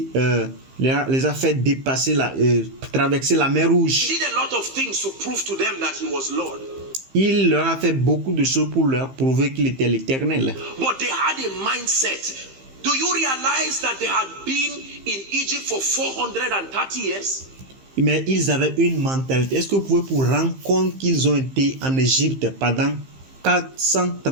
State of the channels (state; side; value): late; left; 15 ms